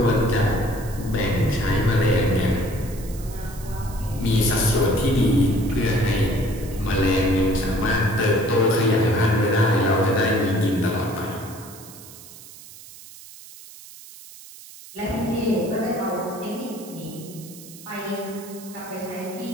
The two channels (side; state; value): right; noise; hiss, 18 dB below the sound